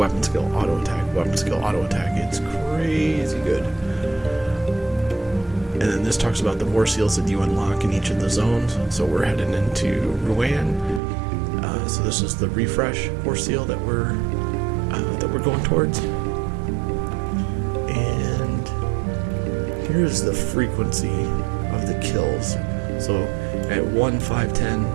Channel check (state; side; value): drops out; left; at 11.0 s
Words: skill, auto attack, weapon skill, auto attack. It's crazy good. And then this talks about the war seals that you unlock in each of the zones. So we're heading into Ruan. So this is the refresh war seal that we're going towards. And here's the frequency of the kills. So at 1, 5, 10,